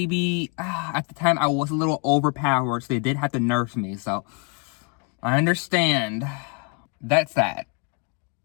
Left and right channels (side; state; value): right; quieter; 36.6 dB